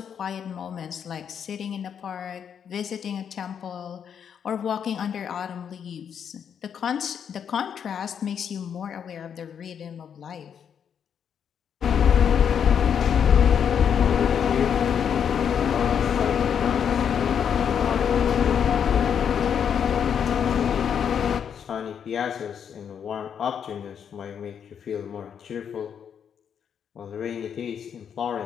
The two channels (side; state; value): right; quieter; 7.9 dB